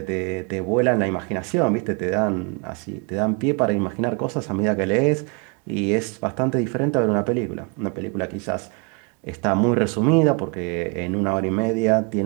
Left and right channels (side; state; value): left; quieter; 34.3 dB